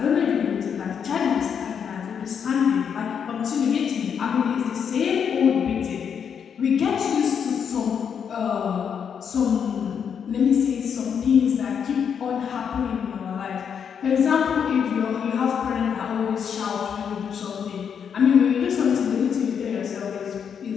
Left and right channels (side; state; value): right; quieter; 7.4 dB